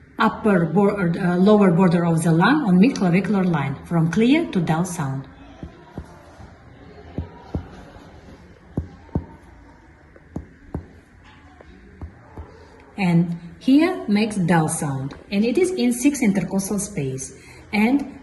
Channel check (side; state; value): both; identical; correlation 1.00